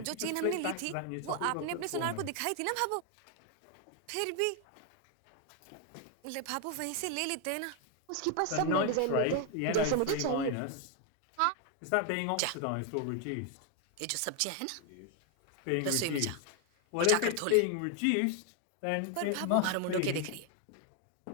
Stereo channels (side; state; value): both; different; correlation 0.01